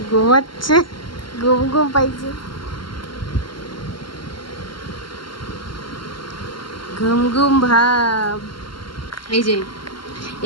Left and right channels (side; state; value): right; late; 0.72 ms